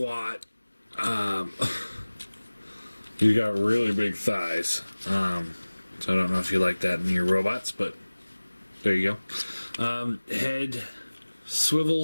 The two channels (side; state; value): both; inverted; correlation -1.00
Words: He's got really big thighs. So I don't know if you like that in your robots, but there you go. Head